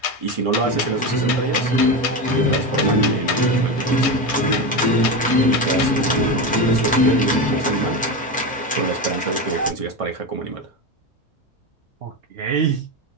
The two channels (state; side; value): normal; both; correlation 0.17